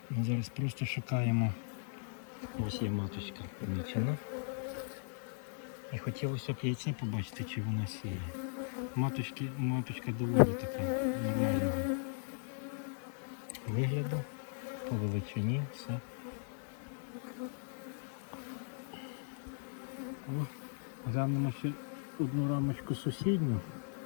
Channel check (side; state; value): right; silent; digital silence